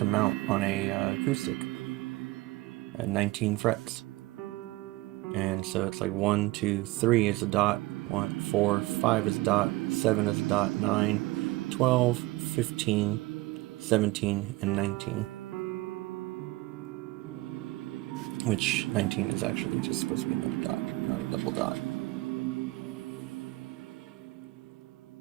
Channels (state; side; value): quieter; left; 20.4 dB